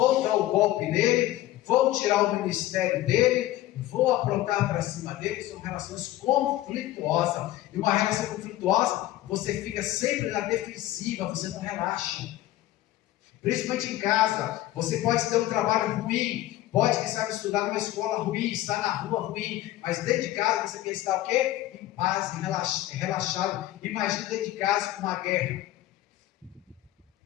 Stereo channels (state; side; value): quieter; right; 15.1 dB